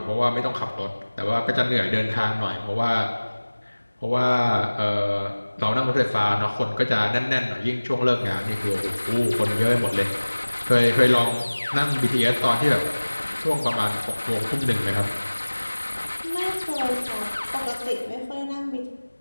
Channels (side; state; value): both; inverted; correlation -1.00